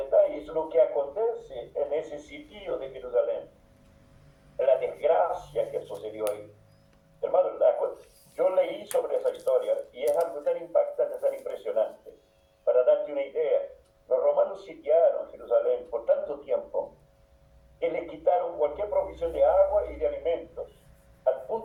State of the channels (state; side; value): identical; both; correlation 1.00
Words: lo que acontece en ese sitio de Jerusalén, la desgracia que sucedió ahí. Hermano, yo leí sobre esa historia y es algo tan impactante, tan impresionante. Para darte una idea, los romanos sitiaron Jerusalén por tanto tiempo que le quitaron cualquier provisión de agua y de alimentos, al